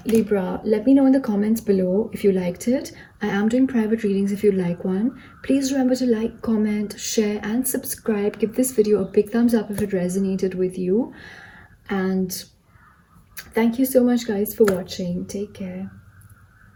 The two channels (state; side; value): identical; both; correlation 1.00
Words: Libra. Let me know in the comments below if you liked it. I am doing private readings if you'd like one. Please remember to like, comment, share, and subscribe. Give this video a big thumbs up if it resonated with you. And thank you so much, guys, for watching. Take care.